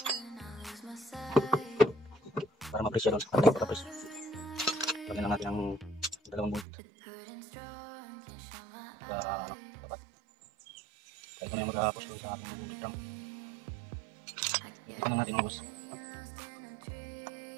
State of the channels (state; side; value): drops out; left; at 6.7 s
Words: para ma-press siya doon sa partay para press. Lagyan lang natin ang dalawang bolt dapat kaya ito na yung mag-push doon sa ating bolt drum. Ito na natin mga boss.